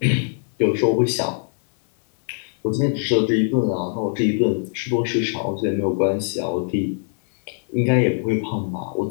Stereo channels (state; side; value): silent; right; 64 dB below the other